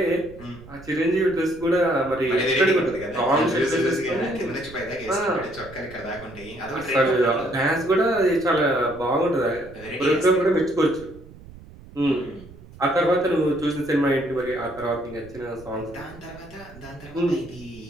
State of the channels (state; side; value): noise; right; rumble, 19 dB below the sound